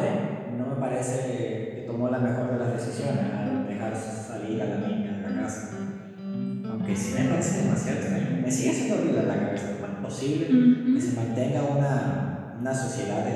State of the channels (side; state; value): both; identical; correlation 1.00